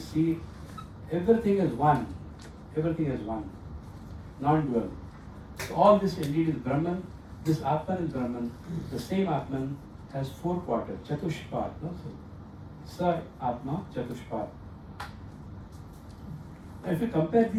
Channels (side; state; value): both; identical; correlation 1.00